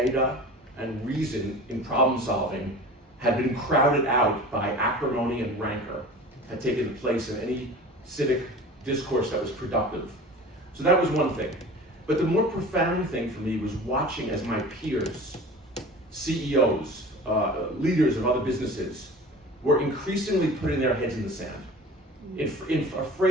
and reason in problem solving had been crowded out by acrimony and rancor, had taken place in any civic discourse that was productive. So that was one thing. But the more profound thing for me was watching as my peers, CEOs, leaders of other businesses, were increasingly putting their heads in the sand,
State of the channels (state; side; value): normal; both; correlation 0.39